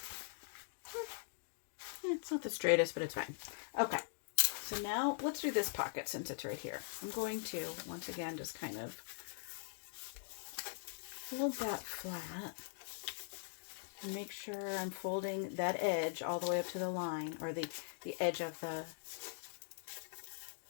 the straightest, but it's fine. Okay, so now let's do this pocket since it's right here. I'm going to, once again, just kind of fold that flat and make sure I'm folding that edge all the way up to the line, or the edge of the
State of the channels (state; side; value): silent; right; digital silence